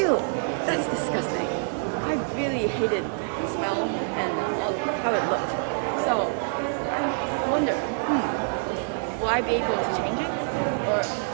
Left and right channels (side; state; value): left; silent; 59 dB below the other